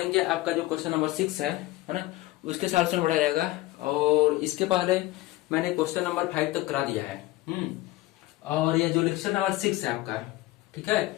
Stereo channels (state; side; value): quieter; right; 17.9 dB